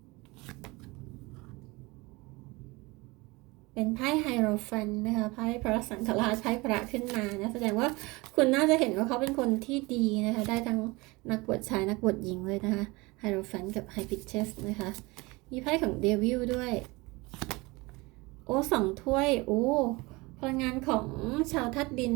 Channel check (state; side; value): quieter; left; 23.8 dB